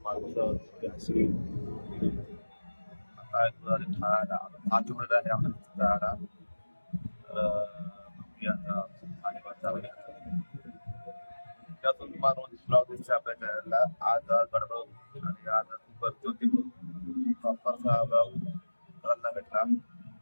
माणसं अशी आज उघडला आहे आम्हाला. त्यातून तुम्हाला रोज ब्लॉग दिसते आपल्या चॅनलला. आज गडबड आणि आज खूप गर्दी होती. प्रॉपरचा ब्लॉग करायला भेटला.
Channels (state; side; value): inverted; both; correlation -1.00